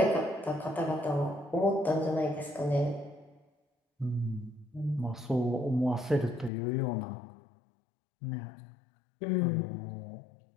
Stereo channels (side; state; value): right; drops out; at 6.5 s